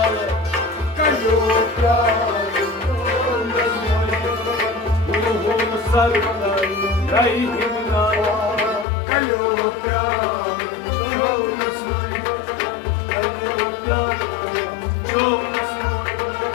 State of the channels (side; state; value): right; drops out; at 8.8 s